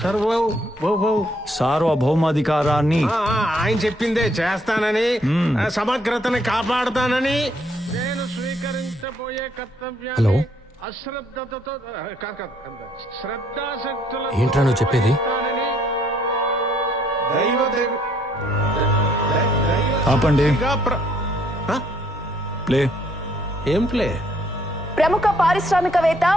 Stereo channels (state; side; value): normal; both; correlation 0.68